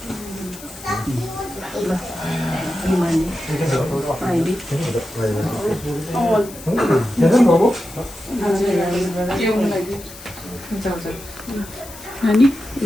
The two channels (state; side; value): noise; left; hiss, 16 dB below the sound